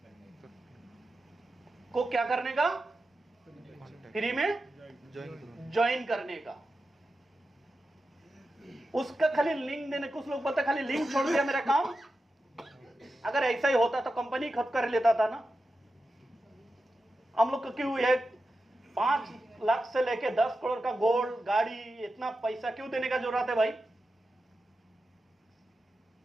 को क्या करने का? फ्री में ज्वाइन करने का। उसका खाली लिंक देने, कुछ लोग बोलते खाली लिंक छोड़ दिया मेरा काम। अगर ऐसा ही होता तो कंपनी खुद कर लेता था ना। हम लोग को क्यों ये 5 लाख से लेके 10 करोड़ का गोल्ड, गाड़ी, इतना पैसा क्यों देने का जरूरत है भाई?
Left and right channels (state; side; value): normal; both; correlation 0.91